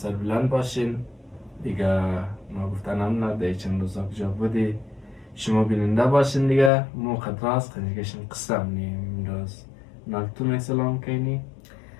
باشین. دیگه نگفتنم نه، دیگه چند روزا کجا بودی شما بیننده باشین. دیگه مو خطراست خنجگشم قسم نیم امروز نالتون سلام کنی.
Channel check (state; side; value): drops out; right; at 6.7 s